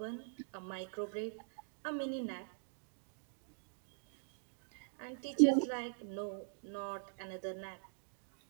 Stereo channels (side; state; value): left; silent; digital silence